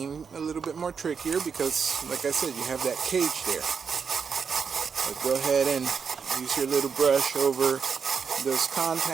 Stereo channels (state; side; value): quieter; left; 6.1 dB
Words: a little bit more trickier because, like I said, you have that cage there. But go ahead and use your little brush over those